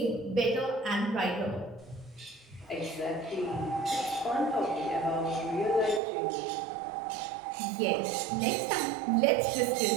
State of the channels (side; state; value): left; drops out; at 6.0 s